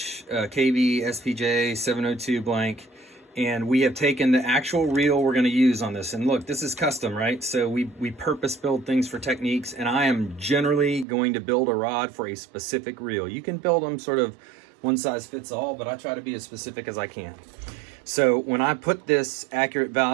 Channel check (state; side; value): drops out; left; at 11.1 s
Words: KB SPJ 702 blank. And we have taken the actual reel we're going to use on this. And look, this is custom, right? So we purpose build things for techniques, and I am generally going to build a rod for a specific reel. You can build them sort of one size fits all, but I try to be as specific as I can. So when I put this Accurate